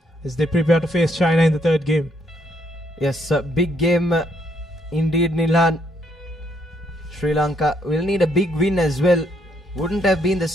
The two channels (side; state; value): both; normal; correlation 0.72